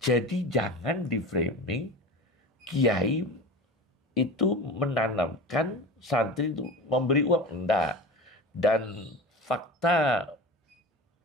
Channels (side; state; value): both; normal; correlation 0.31